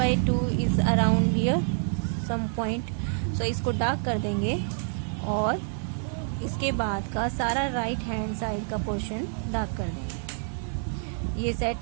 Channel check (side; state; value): left; silent; digital silence